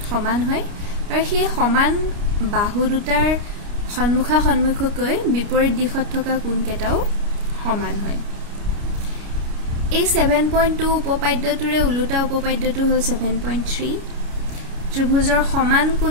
সমান হয় আৰু সেই সমান বাহু দুটাৰ সন্মুখা সন্মুখকৈ বিপৰীত দিশত থকা কোণ কেটাও সমান হয়। এই 7.2 উপপাদ্যটোৰে উলুটা উপপাদ্যটো হ'ল 7.3 ত্ৰিভুজৰ সমান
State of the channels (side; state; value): left; late; 29 ms